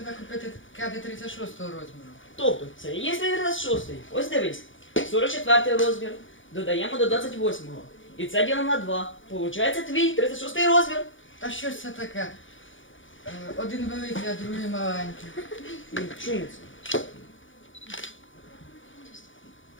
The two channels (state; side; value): late; right; 0.56 ms